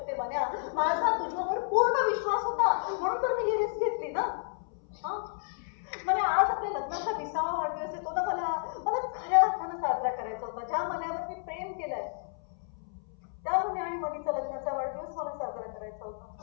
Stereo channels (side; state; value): right; silent; 57 dB below the other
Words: म्हण्या माझा तुझ्यावर पूर्ण विश्वास होता म्हणून तर मी ही रिस्क घेतली ना. म्हणजे आज आपल्या लग्नाचा 20वा वाढदिवस येतो ना. मला खऱ्या अर्थानं साजरा करायचा होता. ज्या मनावर मी प्रेम केलंय त्या मुली आणि मनीचा लग्नाचा वाढदिवस मला साजरा करायचा